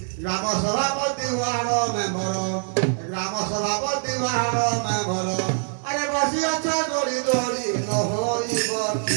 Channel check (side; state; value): left; silent; 63 dB below the other